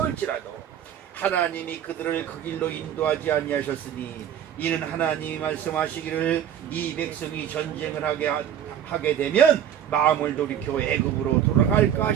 하나님이 그들을 그 길로 인도하지 아니하셨으니 이는 하나님이 말씀하시기를 이 백성이 전쟁을 하게 되면 마음을 돌이켜 애굽으로 돌아갈까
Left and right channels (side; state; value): left; quieter; 9.8 dB